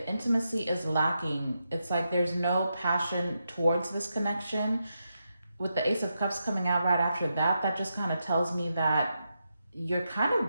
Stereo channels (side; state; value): both; inverted; correlation -0.85